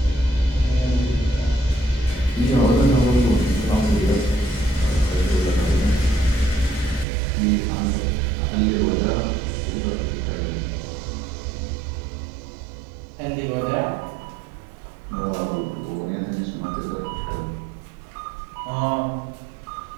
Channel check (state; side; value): drops out; left; at 7.1 s